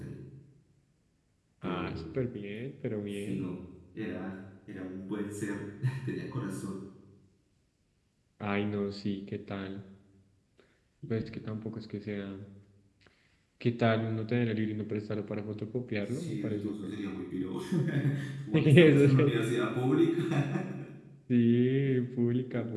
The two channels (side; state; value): both; identical; correlation 1.00